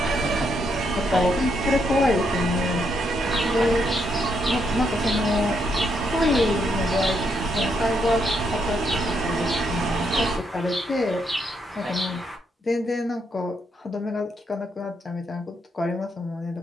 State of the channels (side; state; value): both; normal; correlation 0.77